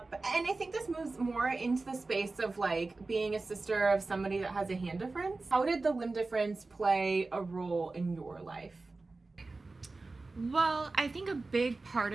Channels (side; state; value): left; quieter; 3.5 dB